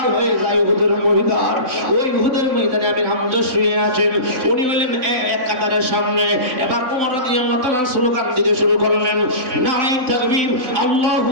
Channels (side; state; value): left; late; 3.9 ms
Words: হয়ে যায়। উহুদের ময়দান, ওই উহুদের ময়দানে আমির হামজা শুয়ে আছেন। উনি বলেন এক কাতারের সামনে। এবার ওমর রাদিয়াল্লাহু তাআলা স্লোগান দিতে শুরু করলেন, নারায়ে তাকবীর, আল্লাহু